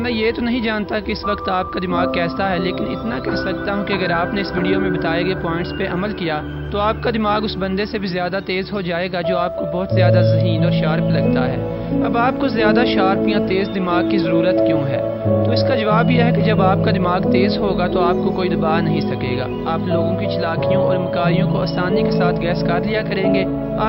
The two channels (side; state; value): both; identical; correlation 1.00